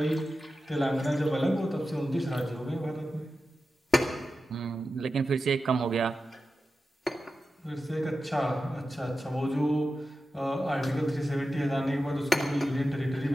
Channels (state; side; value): normal; both; correlation 0.92